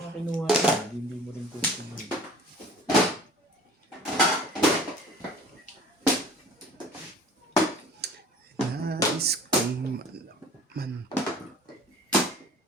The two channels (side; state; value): both; normal; correlation 0.45